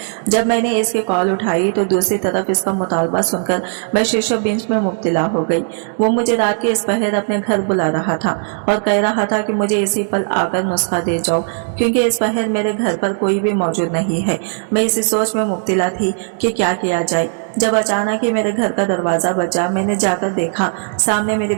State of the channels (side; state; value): left; silent; 68 dB below the other